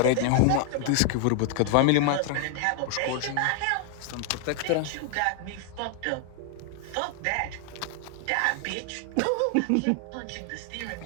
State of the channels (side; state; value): both; different; correlation 0.00